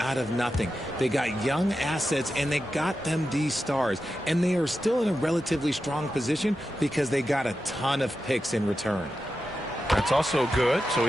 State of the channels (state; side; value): normal; both; correlation 0.90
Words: of nothing. They got young assets, and they got them these stars. And they are still in a relatively strong position because they got a ton of picks in return. That's also good, so